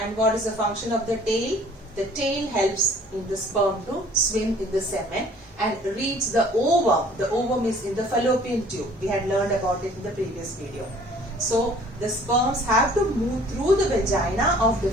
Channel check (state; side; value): normal; both; correlation 0.53